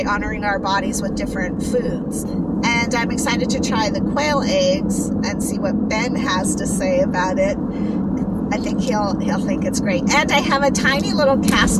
honoring our bodies with different foods. And I'm excited to try the quail eggs and see what Ben has to say about it. I think he'll think it's great. And I have a tiny little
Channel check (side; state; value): both; identical; correlation 1.00